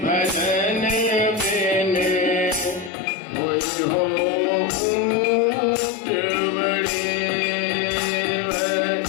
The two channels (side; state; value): right; drops out; at 2.9 s